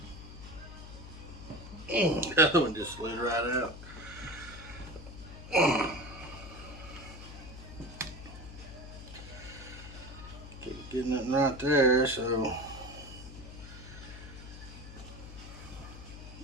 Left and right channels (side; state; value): left; noise; hum, 13 dB below the sound